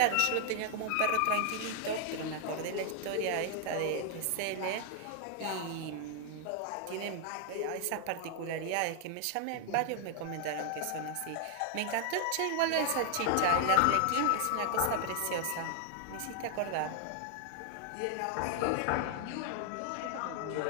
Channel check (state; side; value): different; both; correlation 0.00